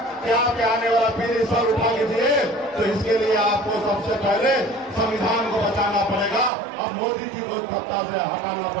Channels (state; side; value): drops out; left; at 6.5 s